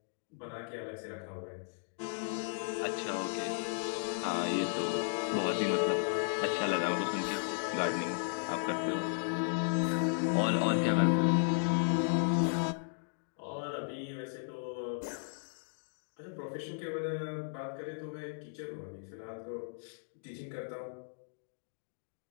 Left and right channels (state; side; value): silent; right; digital silence